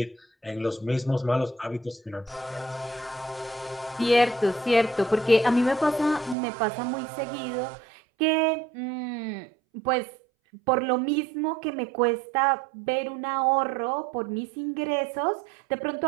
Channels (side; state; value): left; drops out; at 6.4 s